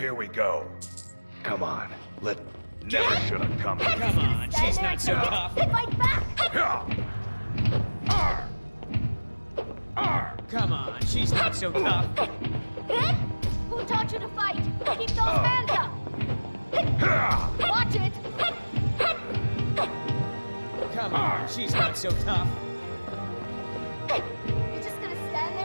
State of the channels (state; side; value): inverted; both; correlation -1.00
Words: we go. Come on, never should have come. Come on, she's not so tough. Fight back! Come on, she's not so tough. Hit? Who taught you to fight? Keep those hands up! Watch it! Come on, she's not so tough. You're just gonna stand